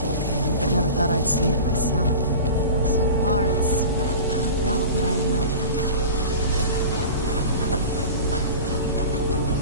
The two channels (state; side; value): inverted; both; correlation -0.35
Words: cairn, but never thought I'd see it myself. So far, it's about what I imagined.